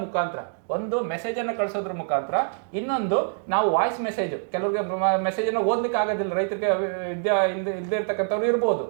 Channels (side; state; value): left; silent; digital silence